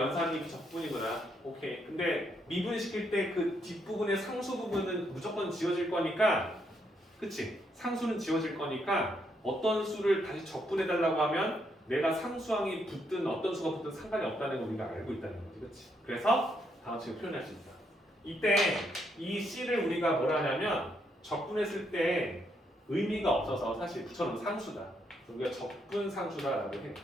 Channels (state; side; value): normal; both; correlation 0.76